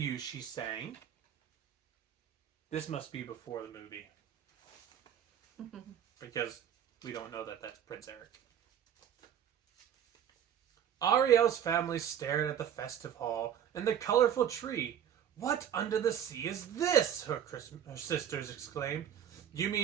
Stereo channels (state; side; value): quieter; left; 9.4 dB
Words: she sang. This must be before the movie. Because we don't know that that's Prince Eric. Ariel's family stared at the festive hall and the colorful tree. What under the sea is this? Her sisters exclaimed. You